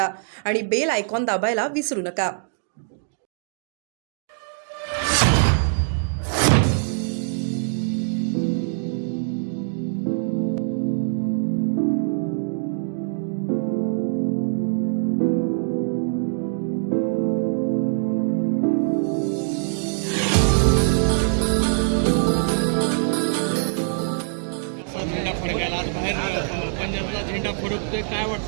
आणि बेल आयकॉन दाबायला विसरू नका. झेंडा फडकायला आज बाहेर पंजाबला झेंडा फडकतोय, काय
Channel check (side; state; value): left; silent; digital silence